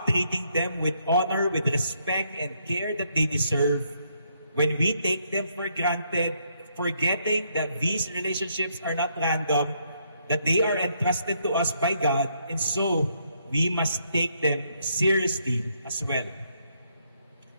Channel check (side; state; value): both; inverted; correlation -0.74